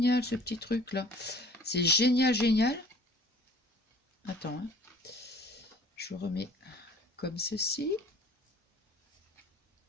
ce petit truc là. C'est génial, génial. Attends, hein. Je remets comme ceci.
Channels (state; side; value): normal; both; correlation 0.50